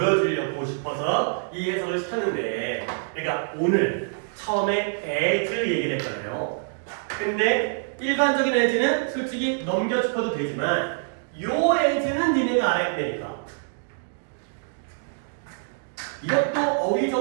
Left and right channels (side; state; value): left; silent; digital silence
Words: 싶어서 이 해석을 시켰는데 그러니까 오늘 처음에 as 얘기를 했잖아요. 근데 일반적인 as는 솔직히 넘겨 짚어도 되지만 요 as는 니네가 알아야 되니까 이것도 어휘